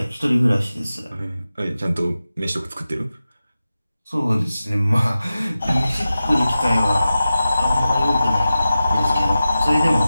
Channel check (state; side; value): inverted; both; correlation -0.94